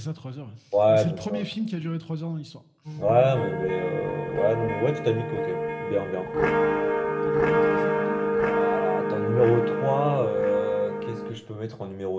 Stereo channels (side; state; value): both; identical; correlation 1.00